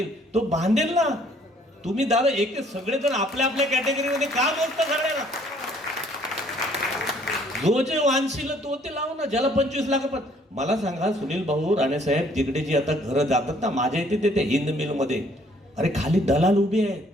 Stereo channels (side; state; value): both; normal; correlation 0.61